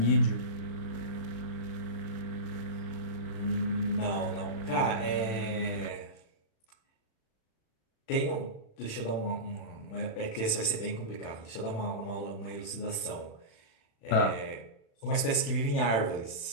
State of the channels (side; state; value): right; late; 36 ms